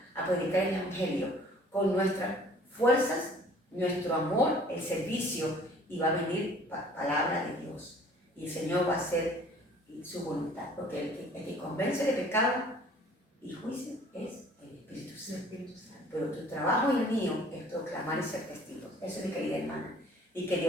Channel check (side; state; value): both; normal; correlation 0.52